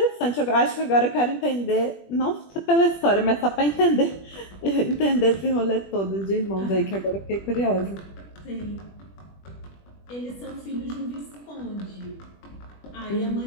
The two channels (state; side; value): late; right; 21 ms